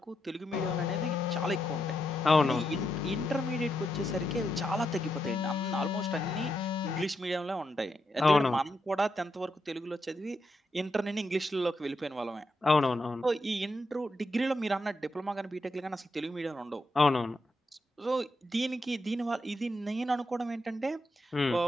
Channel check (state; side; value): normal; both; correlation 0.83